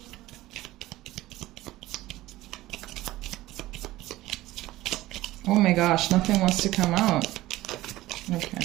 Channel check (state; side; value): quieter; left; 16.9 dB